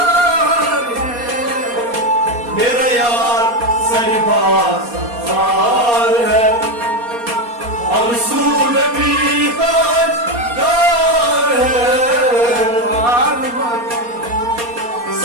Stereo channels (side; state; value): left; late; 4.2 ms